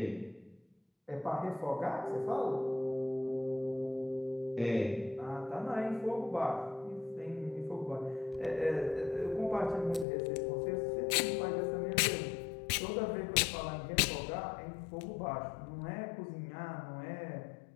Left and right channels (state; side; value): drops out; right; at 10.1 s